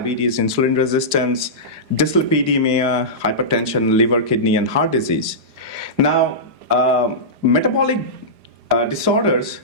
insulin resistance, dyslipidemia, hypertension, liver, kidney, and heart disease. Now, metabolic disorders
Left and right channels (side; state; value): left; late; 4.9 ms